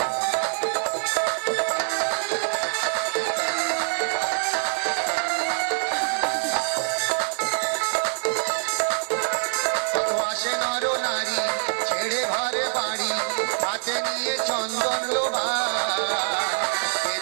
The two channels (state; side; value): silent; left; 62 dB below the other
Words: ছেড়ে ঘরে বাড়ি, হাতে নিয়ে চন্দন লোভা,